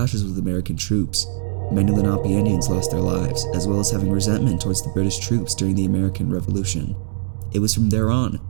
with American troops. Many Lenape Indians lost their lives, as well as having resentment towards the British troops during the American Revolution. It was from there on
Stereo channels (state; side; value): silent; left; 65 dB below the other